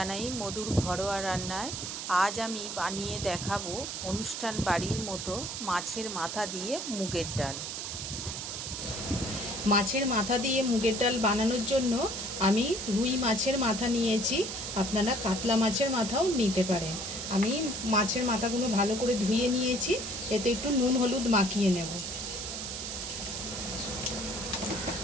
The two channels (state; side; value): noise; right; hiss, 5 dB below the sound